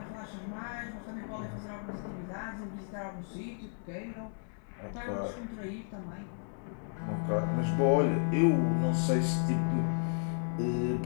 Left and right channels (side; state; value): right; silent; 55 dB below the other